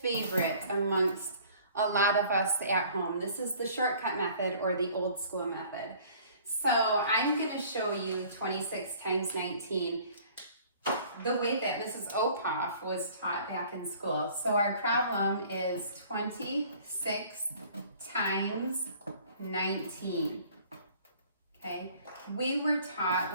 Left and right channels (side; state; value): both; inverted; correlation -0.52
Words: amongst a lot of us at home. This is the shortcut method or the old school method. So I'm going to show you 26 times 19 the way that Mrs. Opoff was taught back in school. So our problem is 26 times 19. Okay, we were taught